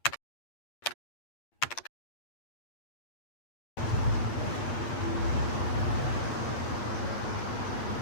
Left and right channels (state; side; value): late; right; 8.6 ms